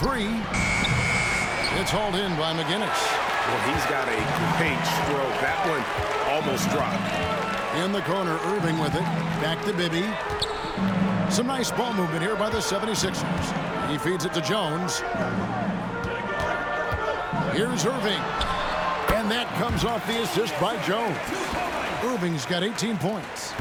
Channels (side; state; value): both; identical; correlation 1.00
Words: It's hauled in by McGinnis. Well, he's got a great stroke. That one almost dropped. In the corner, Irving with it. Back to Bibby. Some nice ball movement here by the 76ers. He feeds it to Jones. Here's Irving. And that comes off the assist by Jones. Irving's got 18 points.